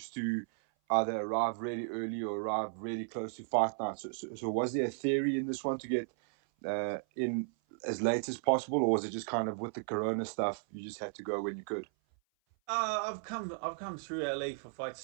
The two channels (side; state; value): left; silent; 55 dB below the other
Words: to either arrive really early or arrive really close to fight night. So was there a theory in this one to get in as late as possible, or was it just kind of with the corona stuff, you just had to go when you could? I've come through LA for